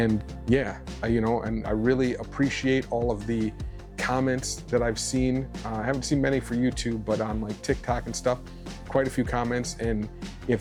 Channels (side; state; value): both; identical; correlation 1.00